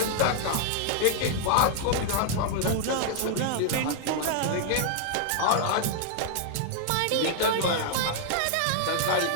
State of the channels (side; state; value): both; different; correlation 0.00